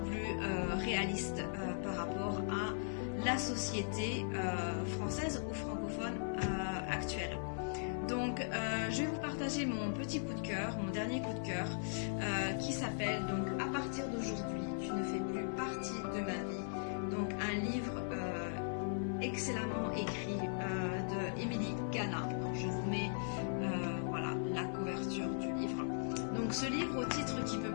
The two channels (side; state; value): right; silent; 52 dB below the other